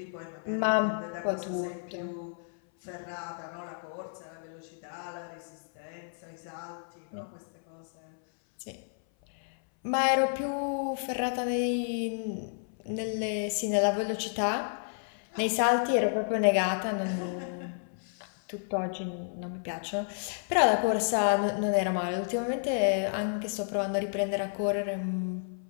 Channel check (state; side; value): silent; right; 57 dB below the other